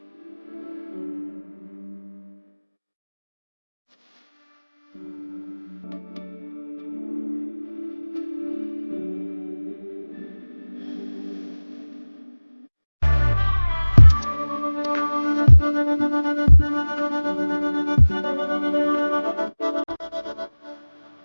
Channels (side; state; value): both; inverted; correlation -1.00